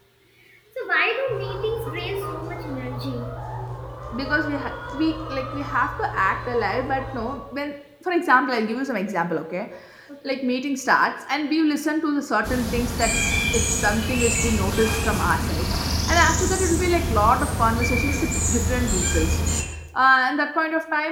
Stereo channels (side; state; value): both; identical; correlation 1.00